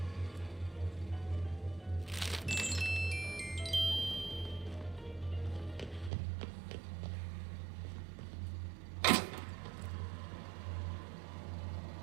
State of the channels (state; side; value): drops out; left; at 6.1 s